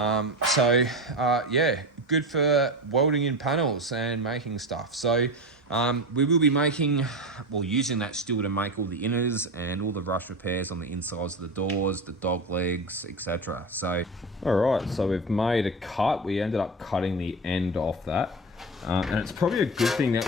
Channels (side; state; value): both; normal; correlation 0.23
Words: good for welding in panels and making stuff. So we will be using that steel to make all the inners and all the rust repairs on the insides of the doors, the dog legs, etc. So, all right, so we've made a cut. We ended up cutting the end off that. And it's probably a good thing that